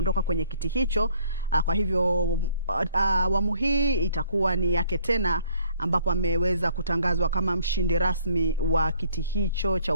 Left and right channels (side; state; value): both; inverted; correlation -0.60